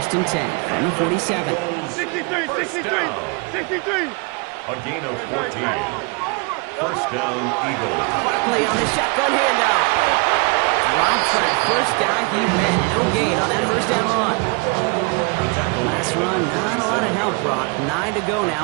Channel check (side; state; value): left; quieter; 31.8 dB